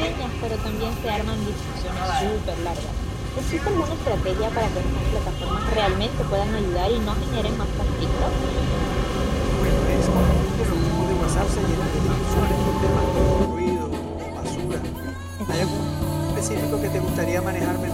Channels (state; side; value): identical; both; correlation 1.00